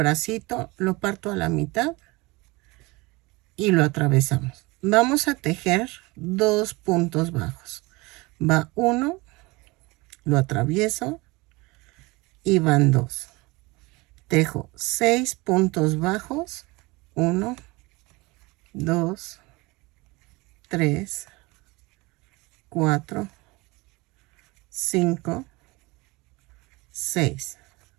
lo parto a la mitad y lo atravesamos. Vamos a tejer 2 puntos bajos. Va 1, lo atravieso y van 2. Tejo 6 puntos bajos. 1, 2, 3, 4, 5, 6.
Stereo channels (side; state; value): left; quieter; 23.7 dB